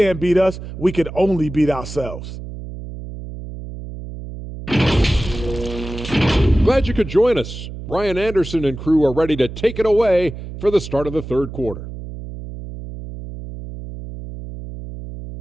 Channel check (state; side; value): noise; right; hum, 11 dB below the sound